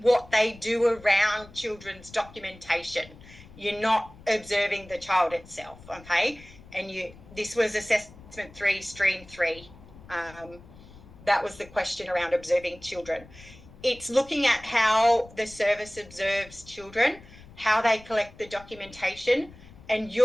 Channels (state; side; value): noise; left; rumble, 21 dB below the sound